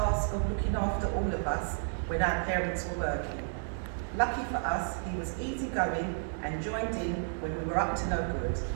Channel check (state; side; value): silent; left; digital silence